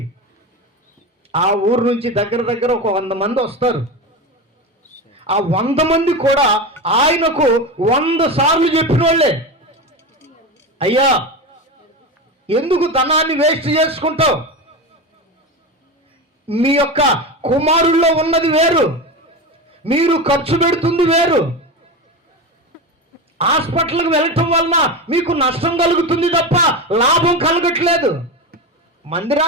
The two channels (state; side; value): normal; both; correlation 0.21